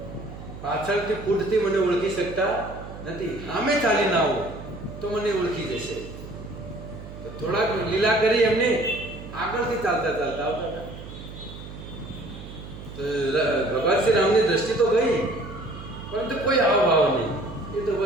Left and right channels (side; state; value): right; noise; hum, 13 dB below the sound